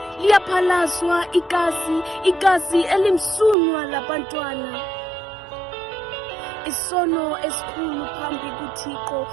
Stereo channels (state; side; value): drops out; left; at 3.6 s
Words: Liyaphalazwa igazi elimsulwa labantwana. Isono esikhulu phambi kuThixo,